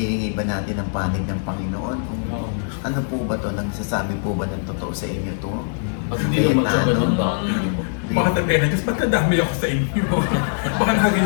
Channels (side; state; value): right; silent; 59 dB below the other